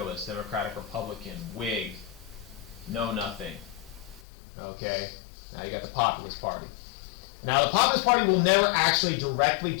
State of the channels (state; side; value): drops out; right; at 4.2 s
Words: Democratic, Republican, Whig, Know Nothing. Okay, now you got the Populist Party. Now the Populist Party will never actually directly